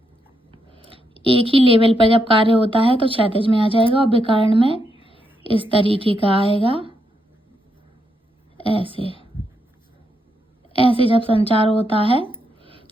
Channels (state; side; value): normal; both; correlation 0.80